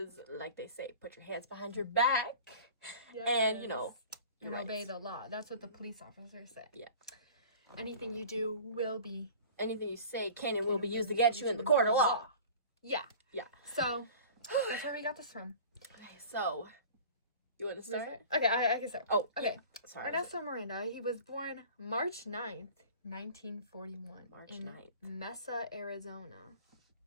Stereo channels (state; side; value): inverted; both; correlation -0.41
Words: like they say, put your hands behind your back. Yes. And, and obey the law. That's what the police officers say. Yeah. Anything you do will be... Anything you say can and will be used against you in the court of law. Yeah. Yeah. So, that's where we got this from. Okay, so, you want to start? Okay, I can start. Oh, okay. Sorry. Ernesto Miranda, he was born March 9th, 1941. March in 9th. Mesa, Arizona.